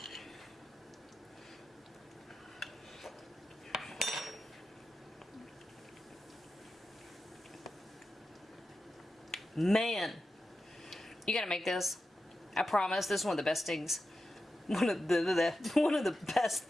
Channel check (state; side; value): normal; both; correlation 0.91